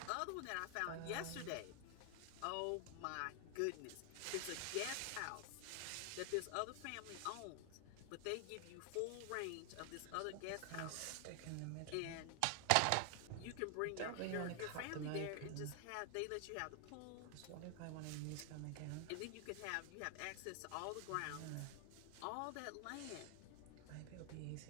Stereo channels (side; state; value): both; different; correlation 0.00